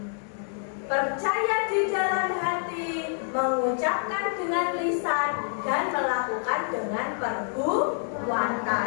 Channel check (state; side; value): silent; right; 60 dB below the other